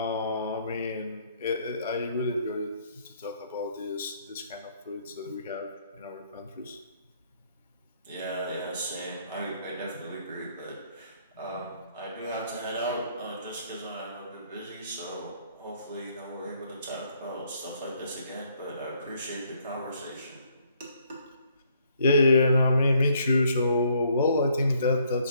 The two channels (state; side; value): inverted; both; correlation -0.67